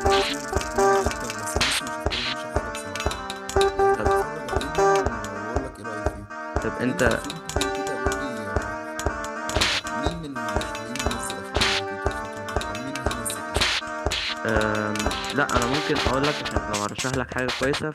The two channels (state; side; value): identical; both; correlation 1.00